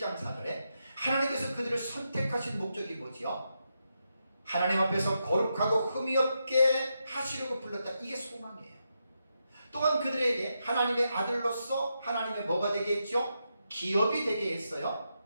4절에 하나님께서 그들을 선택하신 목적이 뭐지요? 하나님 앞에서 거룩하고 흠이 없게 하시려고 불렀다. 이게 소망이에요. 또한 그들에게 하나님의 아들로서 하나님의 뭐가 되게 했죠? 기업이 되게 했어요.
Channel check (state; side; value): inverted; both; correlation -0.85